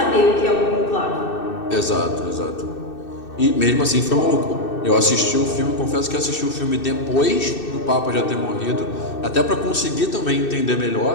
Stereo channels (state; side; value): late; right; 2.6 ms